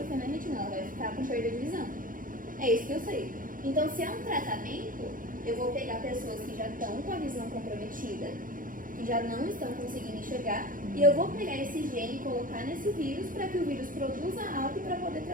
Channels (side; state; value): left; late; 0.40 ms